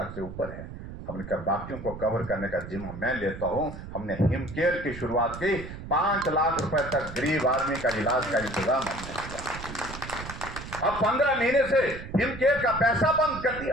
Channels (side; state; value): right; noise; rumble, 11 dB below the sound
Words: से ऊपर है। हमने कहा बाकियों को कवर करने का जिम्मा मैं लेता हूं। हमने हिम केयर की शुरुआत की। 5 लाख रुपए तक गरीब आदमी का इलाज का इंतजाम हमने किया। अब 15 महीने से हिम केयर का पैसा बंद कर